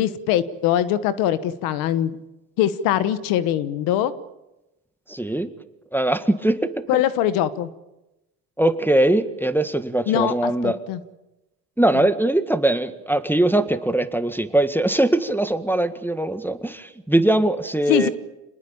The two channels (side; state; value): both; normal; correlation 0.58